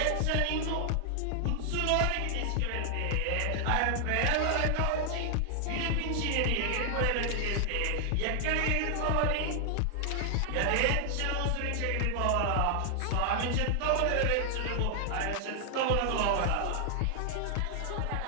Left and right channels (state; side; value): different; both; correlation 0.00